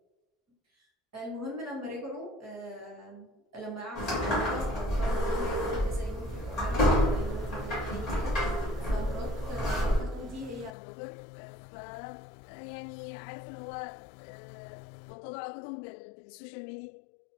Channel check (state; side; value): drops out; right; at 10.8 s